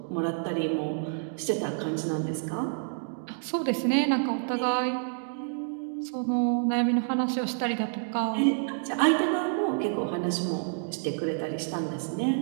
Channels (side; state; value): left; silent; digital silence